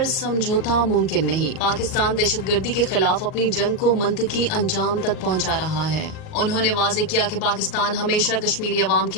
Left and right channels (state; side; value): late; right; 38 ms